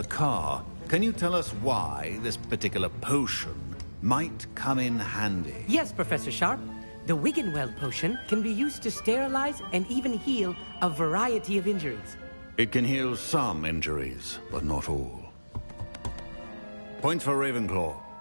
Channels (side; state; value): both; inverted; correlation -1.00